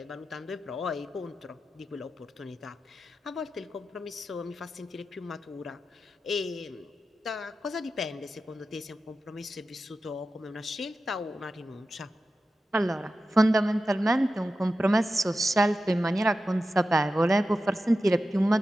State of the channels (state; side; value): normal; both; correlation 0.92